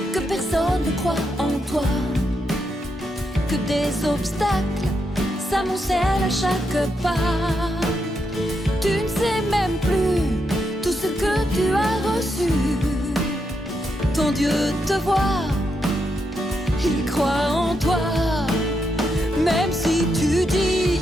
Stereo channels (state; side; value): normal; both; correlation 0.82